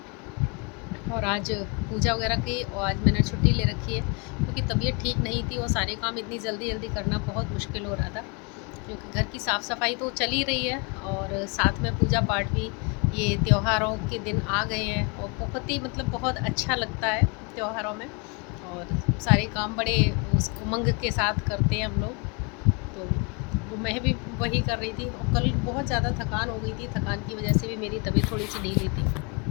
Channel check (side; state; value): right; quieter; 32.6 dB